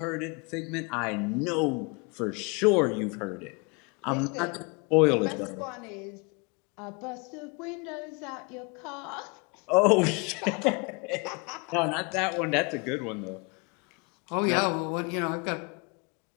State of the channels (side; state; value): right; quieter; 30.7 dB